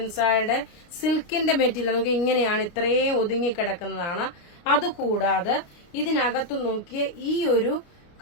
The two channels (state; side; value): late; right; 29 ms